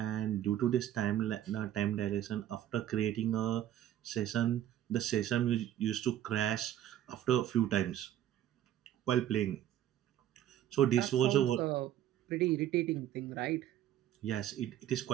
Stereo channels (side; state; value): left; quieter; 11.7 dB